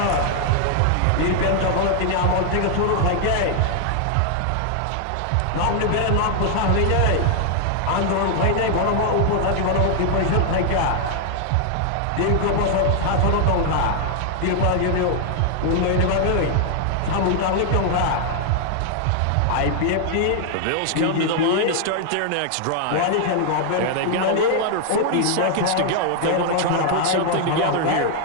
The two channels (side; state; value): both; different; correlation 0.00